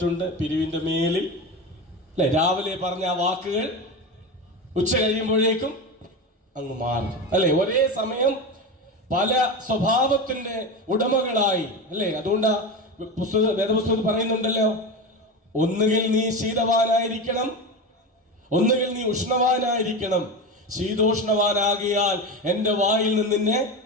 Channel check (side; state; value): both; normal; correlation 0.22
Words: പിരിവിന്റെ മേലിൽ അല്ലെ, രാവിലെ പറഞ്ഞ ആ വാക്കുകൾ ഉച്ച കഴിയുമ്പോഴേക്കും അങ്ങ് മാറും അല്ലെ. ഒരേ സമയം പല സ്വഭാവത്തിന്റെ ഉടമകളായി അല്ലേ. അതുകൊണ്ട് വേദപുസ്തകത്തിൽ പറയുന്നുണ്ടല്ലോ, ഒന്നുകിൽ നീ ശീതവാനായിരിക്കണം, ഒന്നുകിൽ നീ ഉഷ്ണവാനായിരിക്കണം. ശീതോഷ്ണവാനാകിയാൽ എൻ്റെ വായിൽ നിന്ന് നിന്നെ